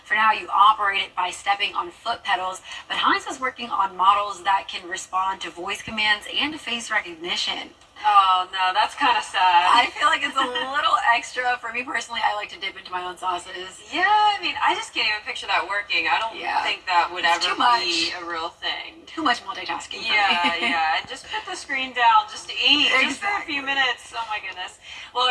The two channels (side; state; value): both; identical; correlation 1.00